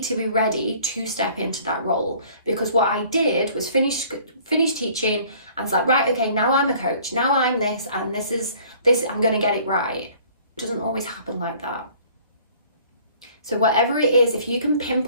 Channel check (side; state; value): both; inverted; correlation -0.54